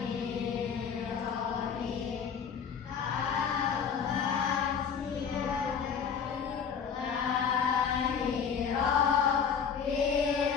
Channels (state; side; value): quieter; right; 6.9 dB